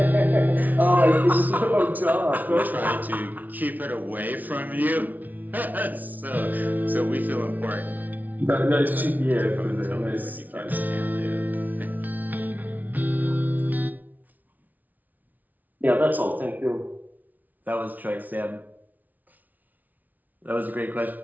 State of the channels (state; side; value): late; left; 0.079 ms